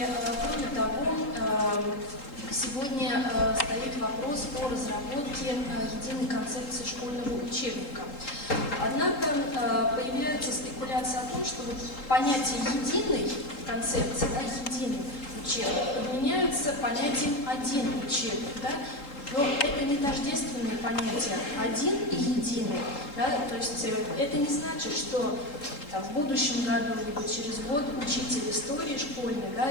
кроме того, сегодня стоит вопрос о разработке единой концепции школьного учебника. Однако появляется спекуляция о том, что вот понятие единой концепции, да, единый учебник, подменяются понятием один учебник. Да? Но это не тождественные понятия один и единый. Да? То есть это не значит, что там, в будущем году либо через год учитель истории школьный, да,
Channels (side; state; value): right; late; 3.7 ms